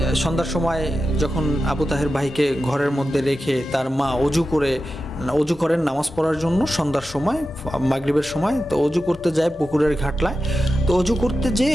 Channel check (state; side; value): normal; both; correlation 0.92